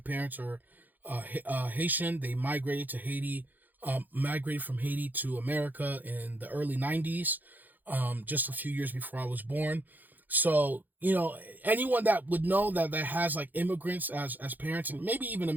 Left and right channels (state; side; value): late; left; 0.085 ms